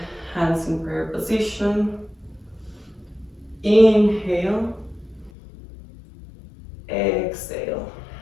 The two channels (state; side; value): drops out; right; at 5.3 s